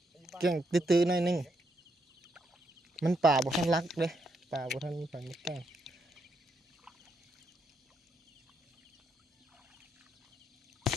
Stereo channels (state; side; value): normal; both; correlation 0.78